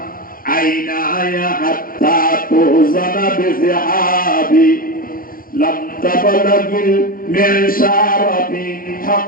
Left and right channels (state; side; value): late; right; 0.41 ms